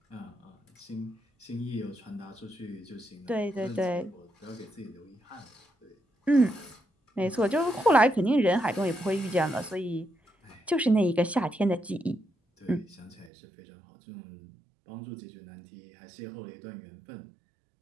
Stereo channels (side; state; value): left; drops out; at 13.3 s